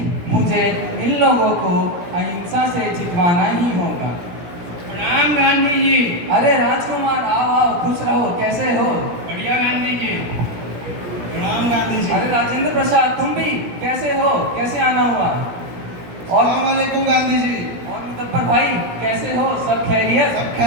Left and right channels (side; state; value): left; late; 17 ms